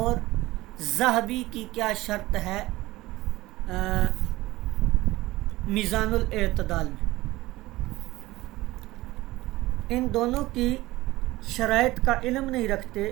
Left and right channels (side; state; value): left; quieter; 18.3 dB